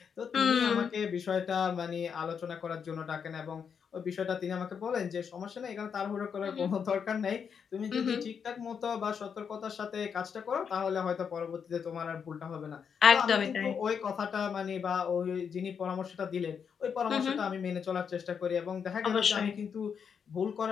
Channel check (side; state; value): right; quieter; 6.9 dB